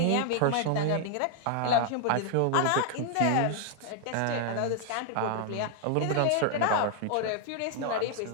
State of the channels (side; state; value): both; different; correlation 0.00